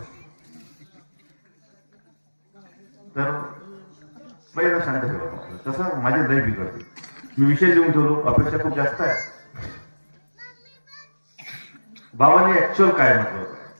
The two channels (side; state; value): both; inverted; correlation -1.00